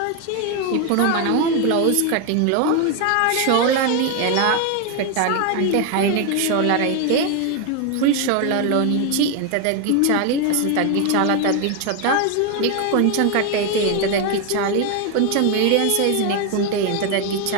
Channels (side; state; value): both; different; correlation 0.01